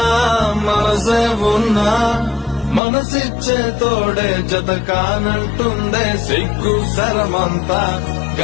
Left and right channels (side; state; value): right; drops out; at 2.8 s